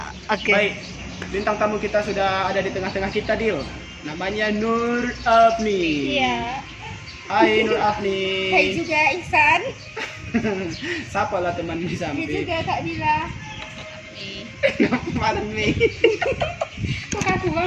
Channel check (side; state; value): both; identical; correlation 1.00